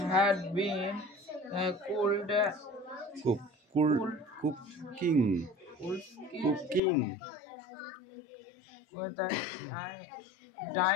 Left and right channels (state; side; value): drops out; right; at 6.8 s